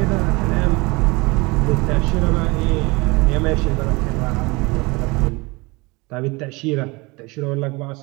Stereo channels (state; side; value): quieter; left; 25.1 dB